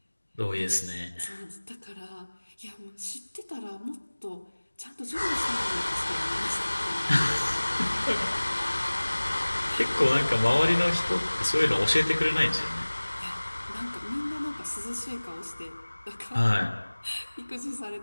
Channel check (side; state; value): both; inverted; correlation -1.00